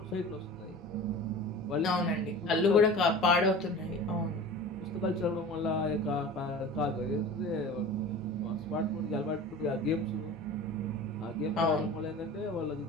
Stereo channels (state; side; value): normal; both; correlation 0.37